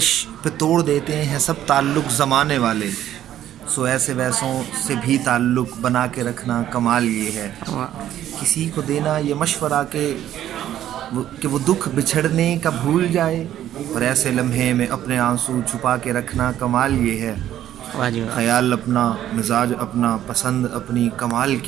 پہ توڑ دیتے ہیں سب تعلق زمانے والے. سو ایسے ویسوں سے بھی تعلق بنا کے رکھنا کمال یہ ہے. کسی کو دینا یہ مشورہ کہ وہ دکھ بچھڑنے کا بھول جائے، اور ایسے لمحے میں اپنے آنسو چھپا کے رکھنا کمال یہ ہے. خیال اپنا، مزاج اپنا، پسند اپنی، کمال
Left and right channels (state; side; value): quieter; left; 11.8 dB